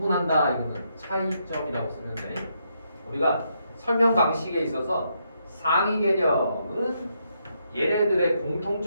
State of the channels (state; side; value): inverted; both; correlation -0.78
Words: 이거는 차이점이라고 쓰면 돼. 우리가 설명 방식에 있어서 상위 개념은 얘네들의